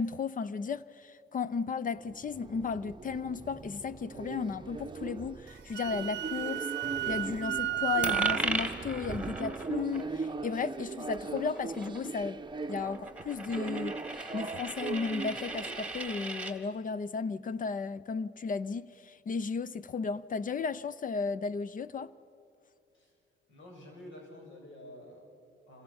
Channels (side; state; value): both; normal; correlation 0.37